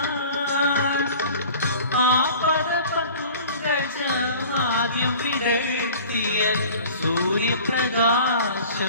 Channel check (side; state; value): both; inverted; correlation -0.44